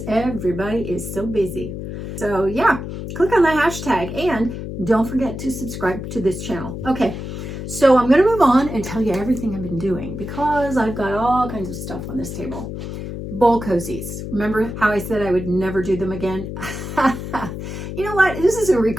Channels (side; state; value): left; noise; hum, 7 dB below the sound